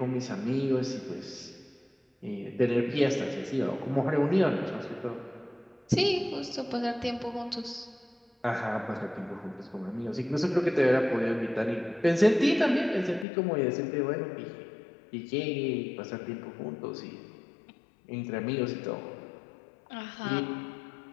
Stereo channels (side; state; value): right; drops out; at 13.2 s